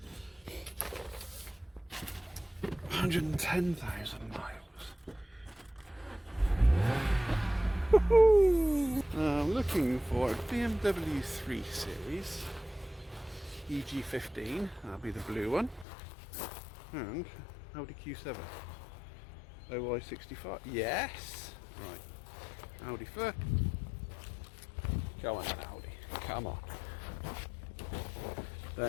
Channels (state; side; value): drops out; right; at 15.9 s